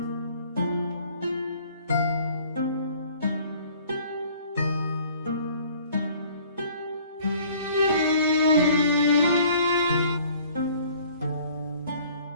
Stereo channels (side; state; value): both; inverted; correlation -0.54